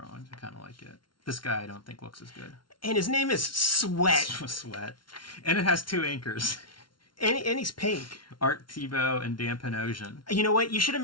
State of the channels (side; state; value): right; late; 0.72 ms